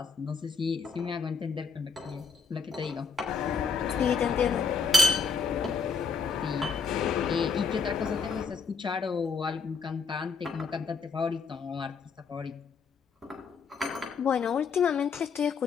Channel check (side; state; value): right; quieter; 5.0 dB